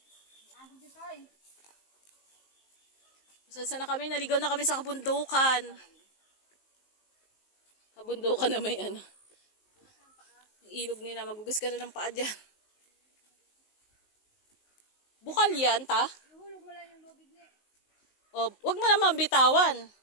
Saan na kami? Naligaw na kami sa kabundukan. Kabundukan na may ilog nila. Magugas ka na ng paa dyan. Bukal yan, ta? Ihulog mo lang yung lubig niya. O, wag mo naman bitawan.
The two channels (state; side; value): late; right; 19 ms